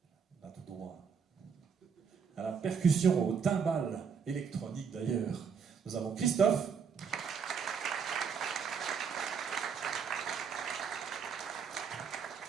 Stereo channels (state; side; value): quieter; left; 6.5 dB